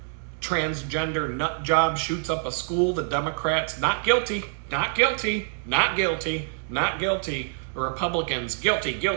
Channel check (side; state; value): left; silent; digital silence